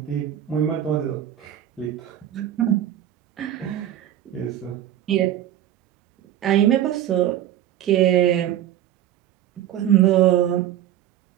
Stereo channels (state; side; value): quieter; left; 11.6 dB